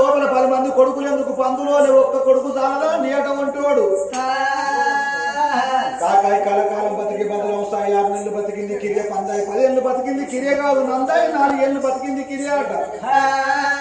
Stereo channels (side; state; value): both; identical; correlation 1.00